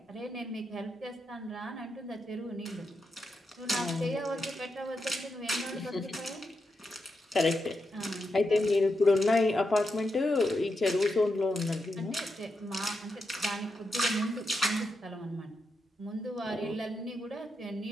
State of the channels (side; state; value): both; normal; correlation 0.85